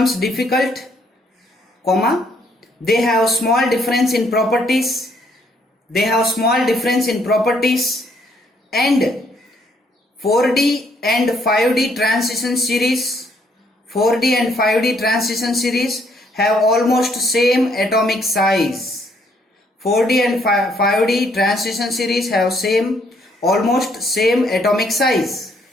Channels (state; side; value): normal; both; correlation 0.68